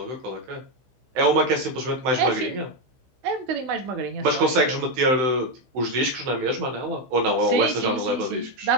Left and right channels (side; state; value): left; late; 16 ms